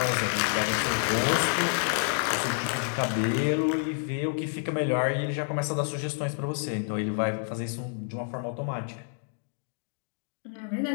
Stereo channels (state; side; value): silent; right; 59 dB below the other